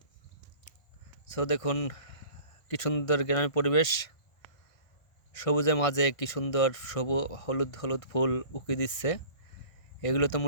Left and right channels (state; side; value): late; right; 1.6 ms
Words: দেখুন কি সুন্দর গ্রামের পরিবেশ। সবুজের মাঝে কি সুন্দর হলুদ হলুদ ফুল উকি দিচ্ছে।